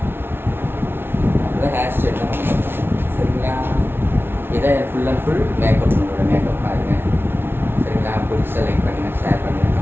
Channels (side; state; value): left; late; 0.11 ms